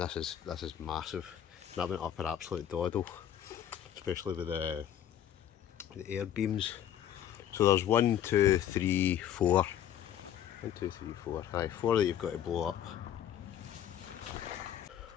is massive. That went up an absolute doddle, especially with the air beams. So there's 1, 2, 3, 4. 1, 2, 3, 4. Aye, 4 that you've got to blow up.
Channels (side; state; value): right; quieter; 10.4 dB